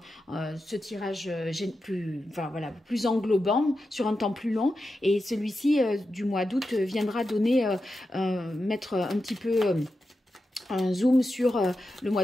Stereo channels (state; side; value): normal; both; correlation 0.90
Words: ce tirage plus englobant sur un temps plus long. Et celui-ci du mois d'août viendra donner, mettre un petit peu... un zoom sur le